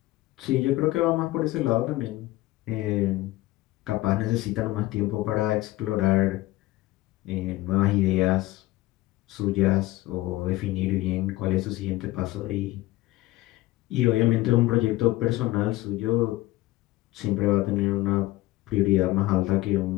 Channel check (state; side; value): quieter; right; 18.0 dB